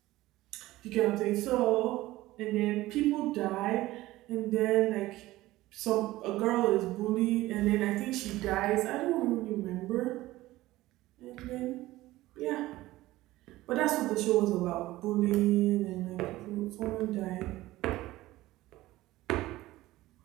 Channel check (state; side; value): quieter; left; 17.2 dB